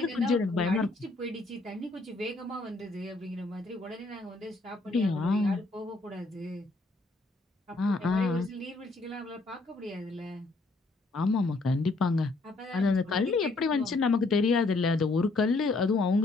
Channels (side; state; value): right; quieter; 3.2 dB